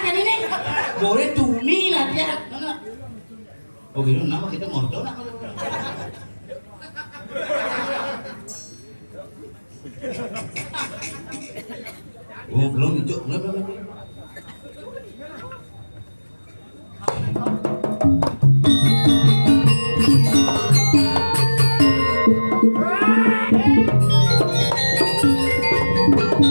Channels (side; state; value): both; inverted; correlation -1.00